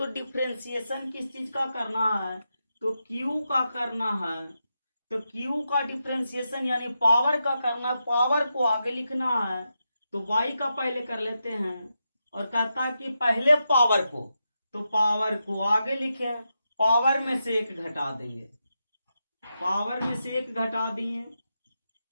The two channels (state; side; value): inverted; both; correlation -0.87